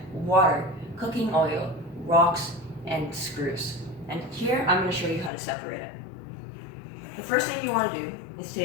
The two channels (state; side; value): drops out; right; at 5.3 s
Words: water, cooking oil, rocks, and screws. And here I'm going to show you how to separate it. The first thing you want to do is